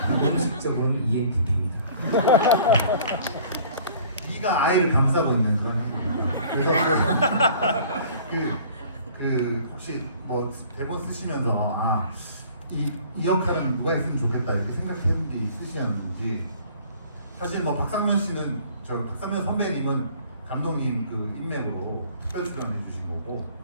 공식적으로는 ENTP입니다. E가 I를 감싸고 있는 그런 행동입니다. 그래서 혹시 뭐 대본 쓰시면서 이 역할은 누가 했으면 좋겠다 이렇게 생각했는 게 있으셨는지 사실 뭐 박상면 씨는 박상면 선배님은 감독님 그 인맥으로 특별 출연해 주신 거고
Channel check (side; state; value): both; inverted; correlation -0.51